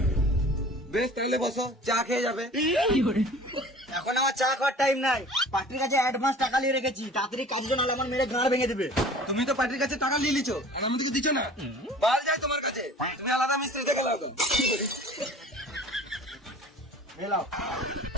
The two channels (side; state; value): both; normal; correlation 0.45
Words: বেশ তাহলে বসো, চা খেয়ে যাবে। এখন আমার চা খাওয়ার টাইম নাই। পার্টির কাছে অ্যাডভান্স টাকা নিয়ে রেখেছি, তাড়াতাড়ি কাজ জন্য আমার মেরে গাঁড় ভেঙে দেবে। তুমি তো পার্টির কাছে টাকা নিয়ে লিছো, আর আমাদেরকে দিচ্ছ না। বাল যায় তোমার কাছে, তুমি আলাদা মিস্ত্রি দেখে লাও তো। মেলাও।